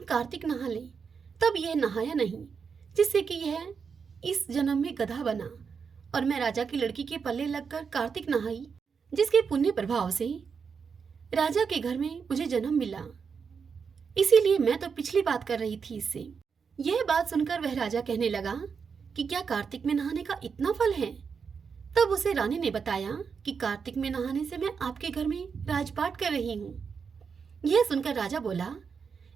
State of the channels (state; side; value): quieter; left; 6.0 dB